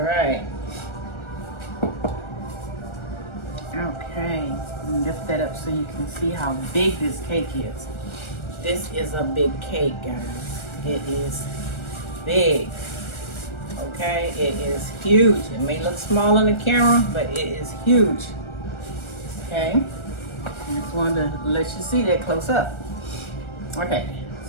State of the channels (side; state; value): right; late; 1.4 ms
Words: Okay, lift that up so you can see how big this cake is. This is a big cake, guys. It is big. Okay, it is huge. It may look small on the camera, but it is huge. Okay, I just wanted to let you see that close up. Okay,